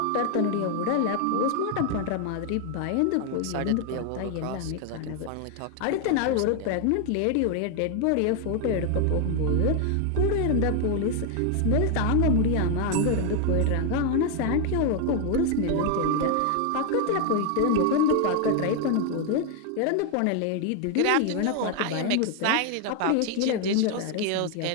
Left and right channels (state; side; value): different; both; correlation 0.01